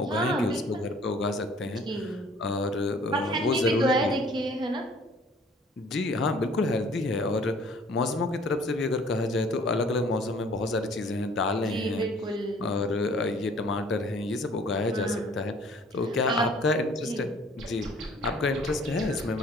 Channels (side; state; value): both; normal; correlation 0.54